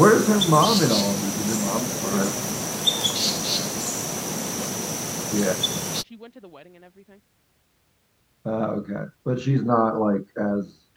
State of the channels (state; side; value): identical; both; correlation 1.00